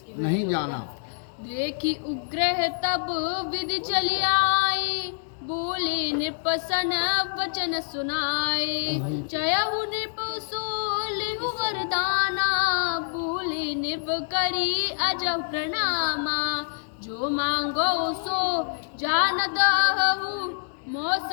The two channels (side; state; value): right; silent; digital silence